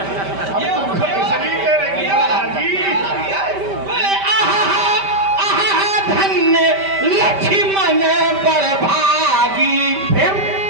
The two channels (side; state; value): left; late; 5.1 ms